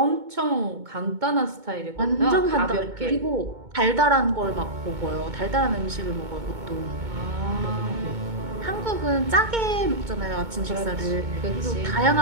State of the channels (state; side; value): late; left; 2.2 ms